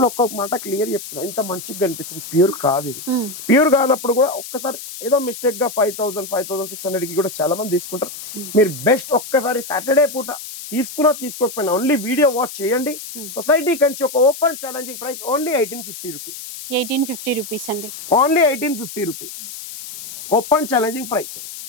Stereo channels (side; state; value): left; noise; hiss, 11 dB below the sound